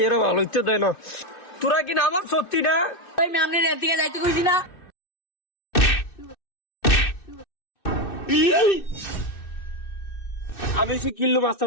এরা ভালো হইতে দেয় না। তোরা কি নামাজ সত্যি না? ওই আপনি রেল থেকে যাইতে কইছি না? আমি সে কিল্লু মাস্তাম,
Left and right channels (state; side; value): late; right; 2.6 ms